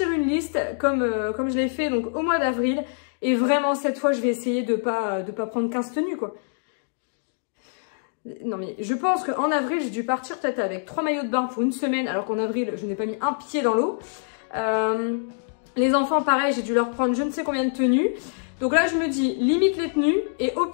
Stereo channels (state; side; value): silent; right; digital silence